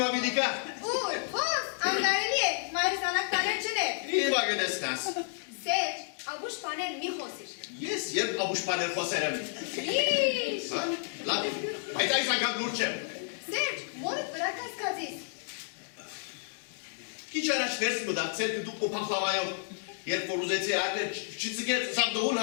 բիդի կա։ Ուր, հոս, անգարելի է, մայրս անակ տաներ չներ։ Հիմա գնեսնաս։ Սեջ, աբուշ պաներ մի խոսիր։ Ես երբ աբուշ պաներ խոսեր եմ։ Լիշ։ Լավ, բայց այս անգամ լուր չեմ։ Սեջ, մորդ վրա կասկածիս։ Քիչ առաջ ներս մտածել դուք փախլավայով, երբ որ ուզեցի արնել, չծգեց սա դողուն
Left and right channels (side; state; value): right; silent; digital silence